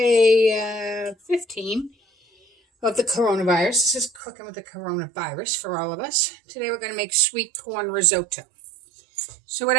15 of the coronavirus. This is cooking with the coronavirus for all of us. Today we're going to make sweet corn risotto. So what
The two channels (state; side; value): drops out; left; at 4.2 s